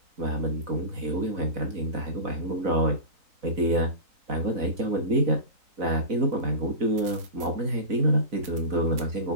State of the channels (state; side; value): late; left; 3.9 ms